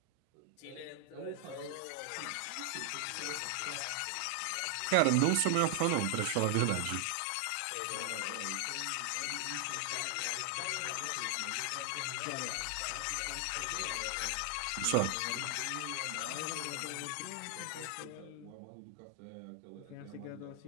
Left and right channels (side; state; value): both; different; correlation 0.00